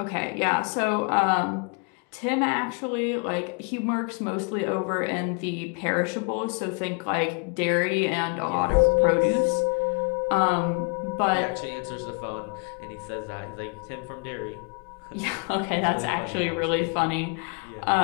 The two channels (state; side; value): quieter; right; 34.2 dB